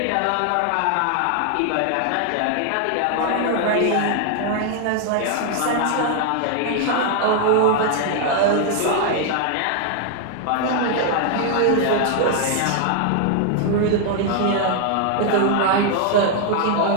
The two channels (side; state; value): both; different; correlation 0.00